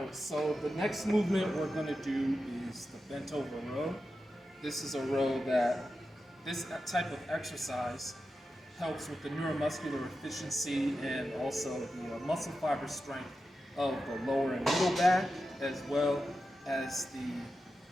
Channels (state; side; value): normal; both; correlation 0.91